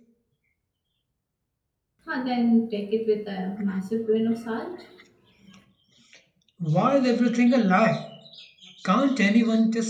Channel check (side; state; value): both; identical; correlation 1.00